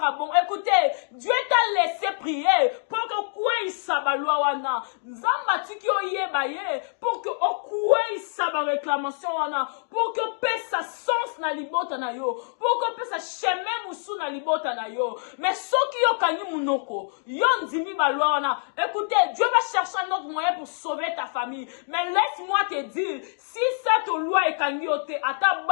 bongo. Écoutez, Dieu t'a laissé prier pour que quoi il sabalua wana. Nzamba tiki oye baye pour que quoi il saba réclamation wana. Pour que paix sa sens na libota na yo. Pour que paix sa chemin musu na libota na yo. Mais ceux qui yo kanyi munoko, yon dimi balua wana. Écoutez, Dieu va chercher un autre moyen pour sauver ta famille. Mais laisse-moi te dire, si cette loi est kanyi, c'est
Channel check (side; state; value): right; silent; 60 dB below the other